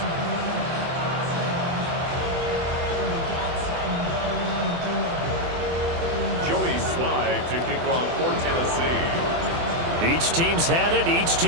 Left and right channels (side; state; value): left; late; 24 ms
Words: Joey Sly to kick off for Tennessee. Each team's had it. Each